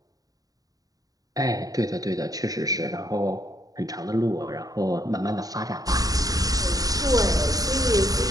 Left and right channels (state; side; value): late; left; 0.18 ms